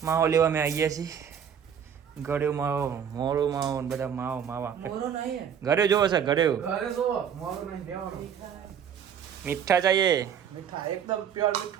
માવો લેવા મેં આવીએ છીએ. ગળ્યો માવો, મોરો માવો ને બધા માવો માવા. મોરો નહીં ગળ્યો જોવો છે ગળ્યો. ઘરે જો મોરો નહીં દેવાનો મીઠા ચાહીએ. મીઠા એકદમ પ્યોર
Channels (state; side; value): quieter; left; 8.2 dB